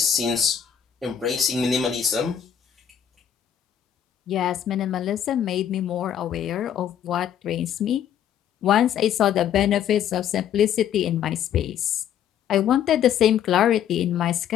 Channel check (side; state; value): right; quieter; 9.4 dB